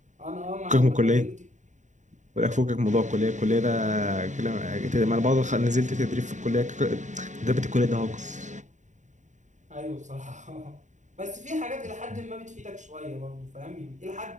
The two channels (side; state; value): left; late; 0.35 ms